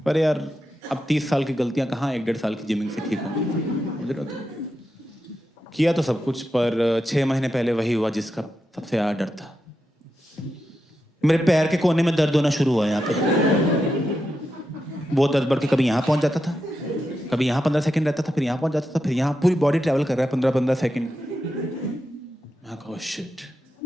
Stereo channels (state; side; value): normal; both; correlation 0.88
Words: पर यार अब 30 साल की गलतियां कहाँ 1-1.5 साल की जिमिंग से ठीक होंगी। मुझे तो किया तो सब कुछ, पर 6 महीने पहले वही हुआ जिसका सबसे ज़्यादा डर था। मेरे पैर के कोने में दर्द होना शुरू हुआ यहाँ पे। वो दर्द बढ़ के कभी यहाँ पहुँच जाता था, कभी यहाँ 15 सेकंड रहता था, फिर यहाँ पहुँच जाता था, फिर यहाँ। पूरी बॉडी ट्रैवल कर रहा है 15-15 सेकंड। मैं कहा शिट,